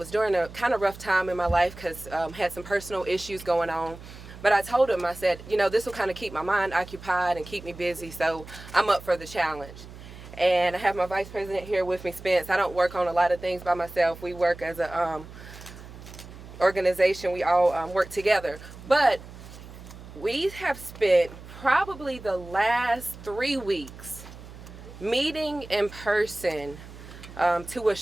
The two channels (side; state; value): right; noise; hum, 16 dB below the sound